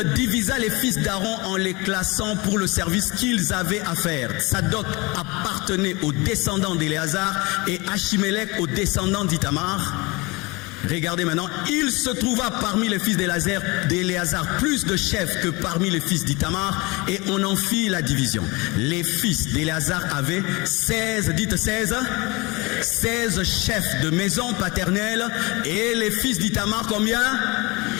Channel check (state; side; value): quieter; right; 25.4 dB